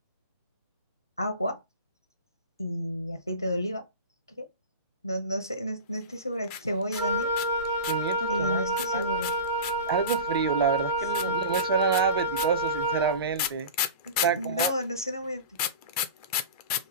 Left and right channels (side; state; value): both; inverted; correlation -0.32